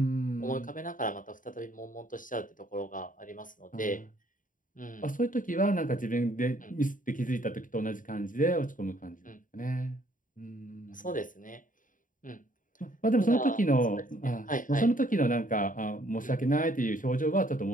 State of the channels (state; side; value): late; right; 0.39 ms